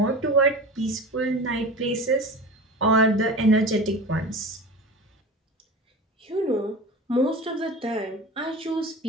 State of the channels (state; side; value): normal; both; correlation 0.33